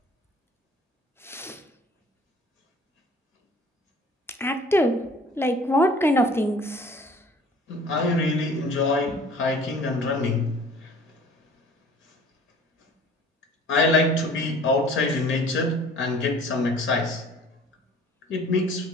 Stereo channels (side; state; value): both; normal; correlation 0.49